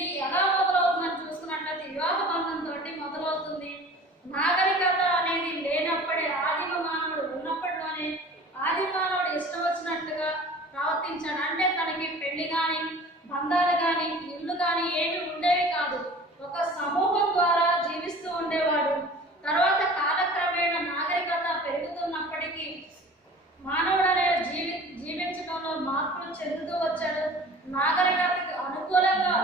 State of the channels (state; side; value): normal; both; correlation 0.43